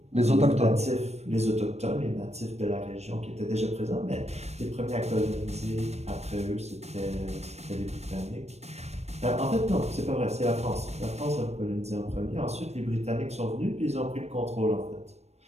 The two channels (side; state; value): left; late; 0.31 ms